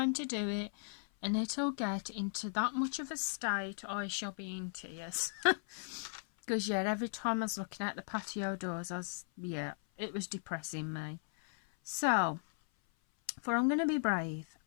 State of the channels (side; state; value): right; silent; 53 dB below the other